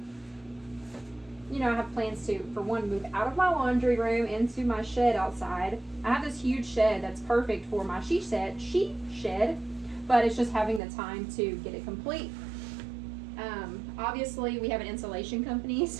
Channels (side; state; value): left; drops out; at 10.8 s